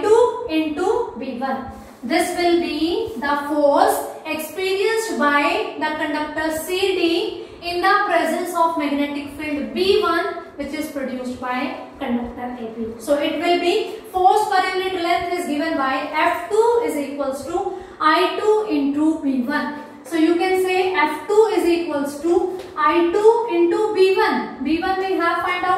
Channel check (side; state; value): both; identical; correlation 1.00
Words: into B1. This will be the force experienced by the conductor CD in the presence of magnetic field B1, which is produced by conductor AB. So it will be force per unit length is given by F2 is equals to I2 into B1. So you can say F2 is equals to I2 into B1. B1 we have find